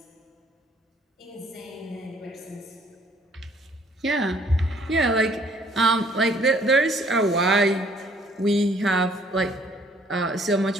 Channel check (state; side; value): normal; both; correlation 0.61